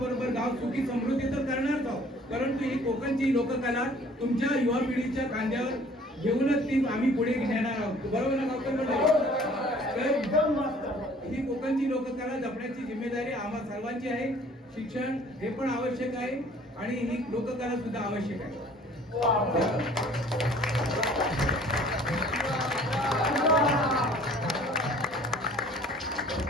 गाव सुखी समृद्धी तर करणारच आहोत, परंतु ही कोकणची लोककला तुमच्या युवा पिढीच्या खांद्यावर घेऊनच ती आम्ही पुढे नेणार आहोत. बरोबर ना गावकर मंडळी? ही कोकणची लोककला जपण्याची जिम्मेदारी आम्हा सर्वांची आहे. शिक्षण हे पण आवश्यक आहे आणि ही लोककला सुद्धा आवश्यक आहे.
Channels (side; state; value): both; normal; correlation 0.53